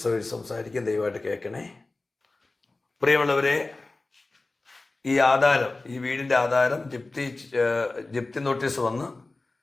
സംസാരിക്കും. ദയവായിട്ട് കേൾക്കണേ. പ്രിയമുള്ളവരെ, ഈ വീടിൻ്റെ ആധാരം ജപ്തി നോട്ടീസ് വന്ന്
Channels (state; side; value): quieter; right; 3.2 dB